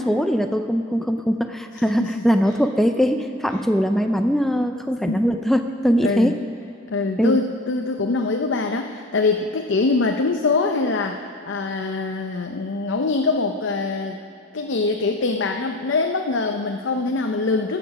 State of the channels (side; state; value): both; normal; correlation 0.49